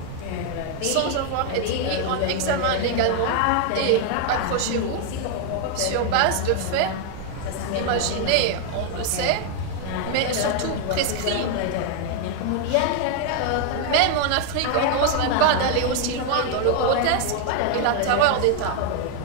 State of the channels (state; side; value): different; both; correlation 0.01